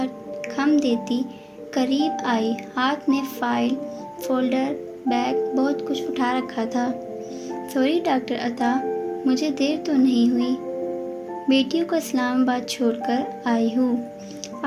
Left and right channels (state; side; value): identical; both; correlation 1.00